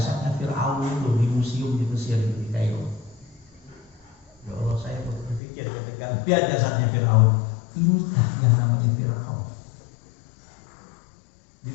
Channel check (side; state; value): right; drops out; at 5.4 s